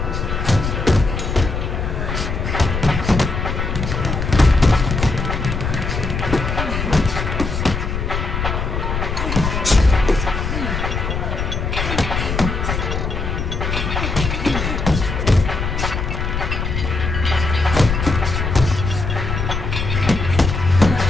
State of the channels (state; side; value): noise; left; rumble, 2 dB below the sound